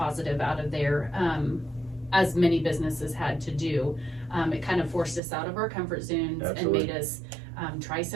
out of there, as many businesses had to do, it kind of forced us out of our comfort zones. Absolutely. And made us try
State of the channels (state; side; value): drops out; left; at 5.2 s